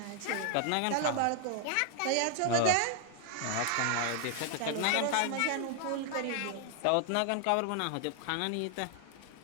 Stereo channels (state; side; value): different; both; correlation 0.00